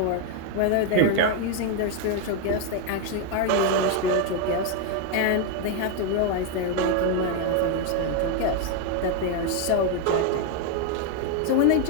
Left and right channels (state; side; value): different; both; correlation 0.01